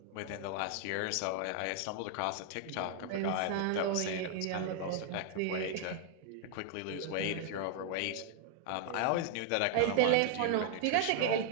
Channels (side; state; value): both; different; correlation 0.00